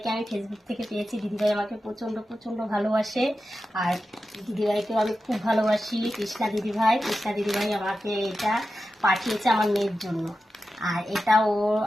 আমি ফেসবুক থেকে পেয়েছি। দিদিভাই আমাকে প্রচণ্ড প্রচণ্ড ভালোবাসে। আর দিদিভাইকেও আমি খুব ভালোবাসি। কৃষ্ণা দিদিভাই আমাকে এটা পাঠিয়েছে আমার মেয়ের জন্য। আর এটা ও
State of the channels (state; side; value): normal; both; correlation 0.92